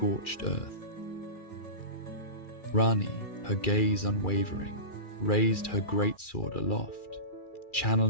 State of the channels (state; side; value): late; right; 2.4 ms